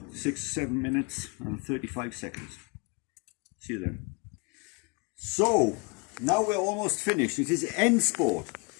minutes and 35 seconds. See you then. So, now we're almost finished. It is end sport.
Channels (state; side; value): quieter; right; 30.9 dB